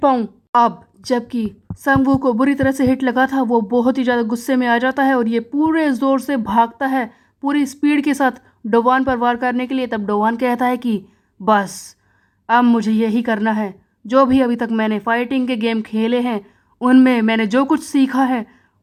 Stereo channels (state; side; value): identical; both; correlation 1.00